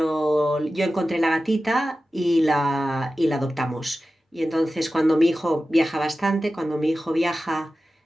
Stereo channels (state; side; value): normal; both; correlation 0.94